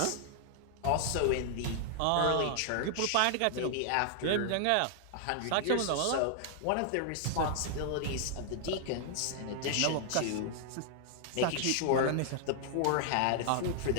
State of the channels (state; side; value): different; both; correlation 0.00